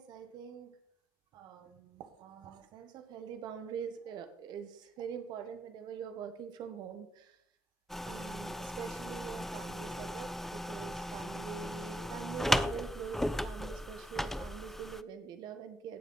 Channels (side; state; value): both; normal; correlation 0.82